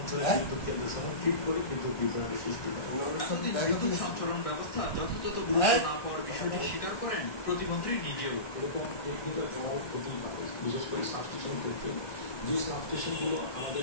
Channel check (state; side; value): late; right; 1.2 ms